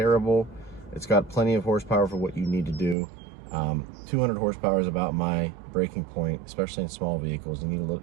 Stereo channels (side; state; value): left; drops out; at 3.0 s